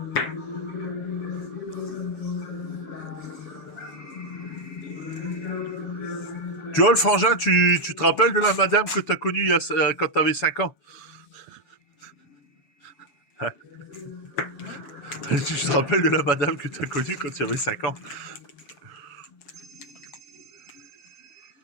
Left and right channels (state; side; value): late; right; 6.9 ms